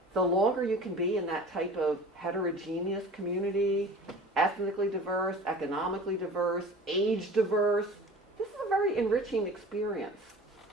the longer you can be in that type of heterogeneous community, ethnically diverse, economically diverse, age diverse. This is a very enriching experience.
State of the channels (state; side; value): normal; both; correlation 0.41